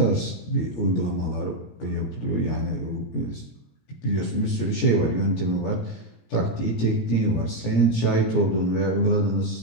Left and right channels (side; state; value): right; late; 17 ms